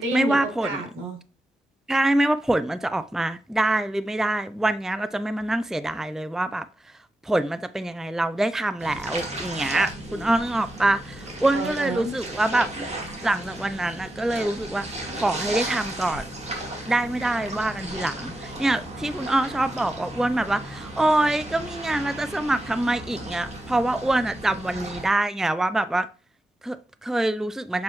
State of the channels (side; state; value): both; normal; correlation 0.89